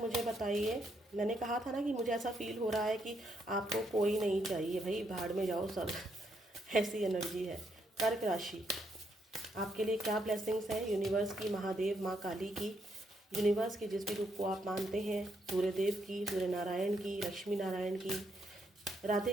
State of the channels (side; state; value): both; normal; correlation 0.77